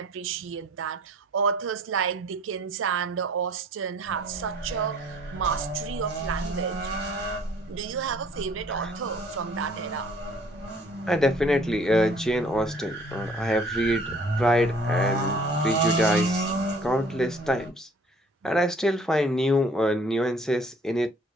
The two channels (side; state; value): both; normal; correlation 0.55